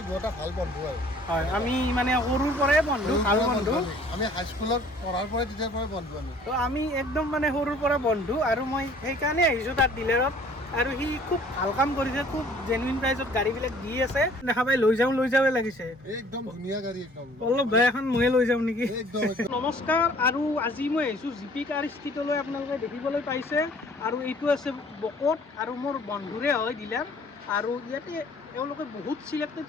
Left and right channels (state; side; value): normal; both; correlation 0.54